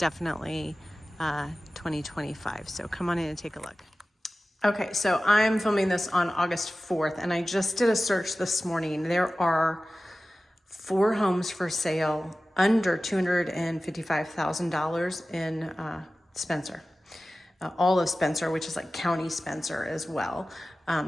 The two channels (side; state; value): both; normal; correlation 0.96